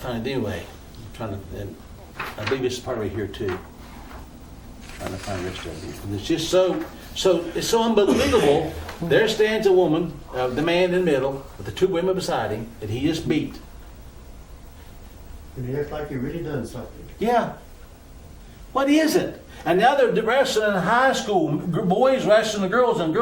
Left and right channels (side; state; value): both; identical; correlation 1.00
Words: anyway, I'm trying to, and I believe this is part of it here too. Trying to find the rest of it. And it's just so it's so unbelievable. There stands a woman, the man in the middle, with the two women beside him that he just beat. And he acts like he really done something. Yeah. What is it? And now they're wrestling in high school, boys wrestling the girls and